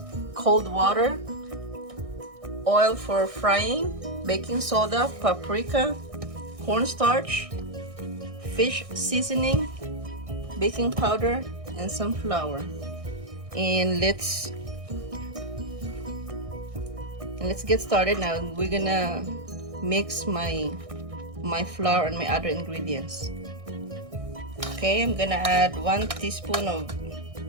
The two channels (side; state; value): left; late; 1.6 ms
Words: cold water, oil for frying, baking soda, paprika, cornstarch, fish seasoning, baking powder, and some flour. And let's get started now. We're gonna mix my flour and my other ingredients. Okay, I'm gonna add 1 teaspoon of